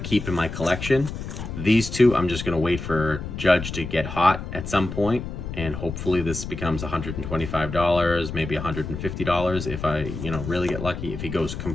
in my collection. These 2 I'm just going to wait for Judge to get hot at some point, and hopefully this becomes $125, maybe $150 if I, really get lucky. If he goes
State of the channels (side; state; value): left; noise; rumble, 7 dB below the sound